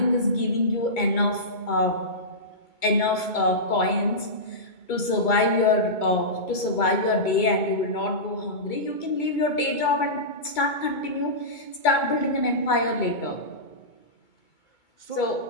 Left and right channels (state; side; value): late; right; 2.2 ms